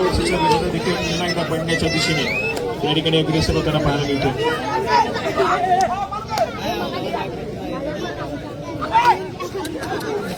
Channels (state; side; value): identical; both; correlation 1.00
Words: विजेता देखील पुन्हा एकदा पडण्याच्या दिशेने या ठिकाणी अग्रेसर होताना पाहायला मिळतोय.